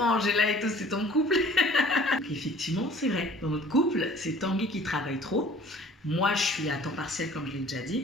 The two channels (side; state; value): both; normal; correlation 0.51